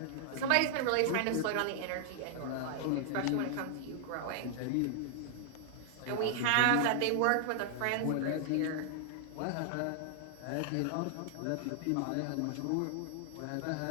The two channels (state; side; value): different; both; correlation 0.00